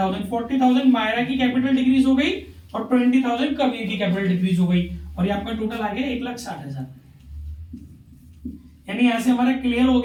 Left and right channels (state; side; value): identical; both; correlation 1.00